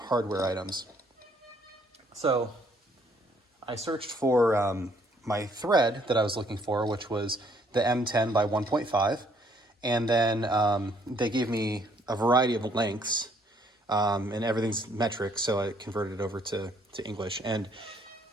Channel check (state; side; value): normal; both; correlation 0.66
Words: items. So I searched for my thread that I was looking for, which was the M10 by 1.5. And then they gave me a variety of lengths, and everything's metric, so I converted it over to English. And